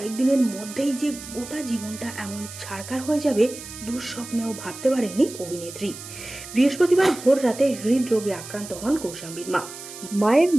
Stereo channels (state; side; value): noise; right; hiss, 13 dB below the sound